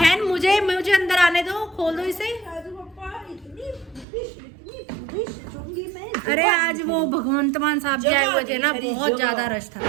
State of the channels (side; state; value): left; drops out; at 4.0 s